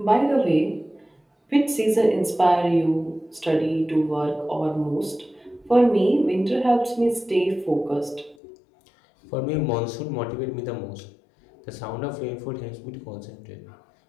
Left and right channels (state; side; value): drops out; right; at 8.3 s